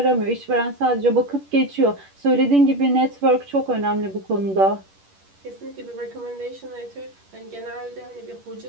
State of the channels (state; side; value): late; left; 10 ms